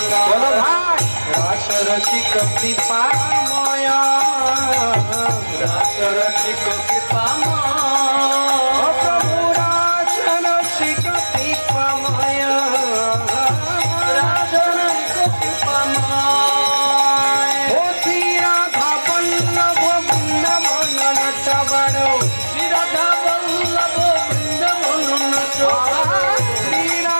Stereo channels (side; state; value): both; inverted; correlation -1.00